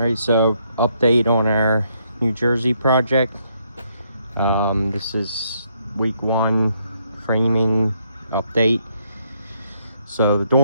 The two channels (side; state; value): both; inverted; correlation -0.74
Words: so update on our New Jersey project. This is week 1 framing update. So the